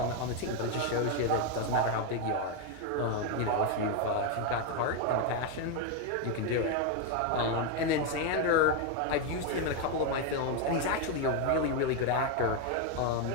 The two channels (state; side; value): different; both; correlation 0.02